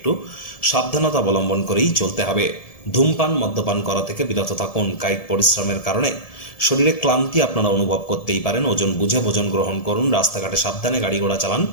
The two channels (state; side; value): late; right; 1.7 ms